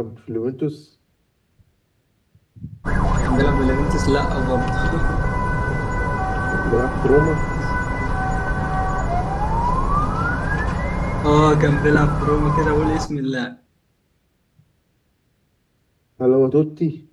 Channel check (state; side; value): identical; both; correlation 1.00